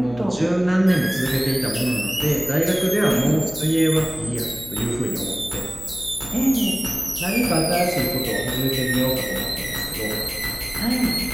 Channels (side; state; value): left; noise; hum, 16 dB below the sound